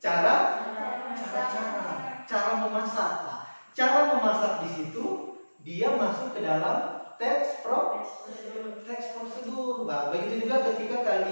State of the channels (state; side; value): inverted; both; correlation -1.00